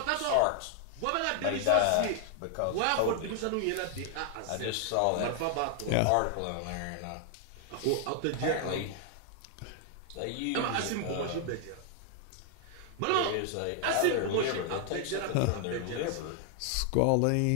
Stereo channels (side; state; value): both; different; correlation 0.00